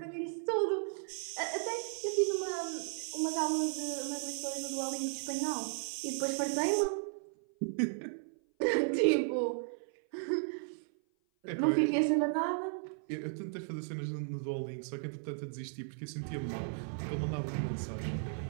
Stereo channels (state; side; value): silent; left; 54 dB below the other